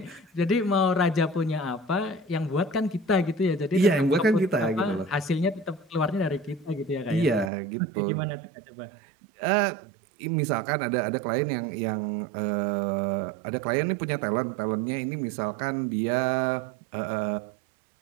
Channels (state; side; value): drops out; left; at 7.5 s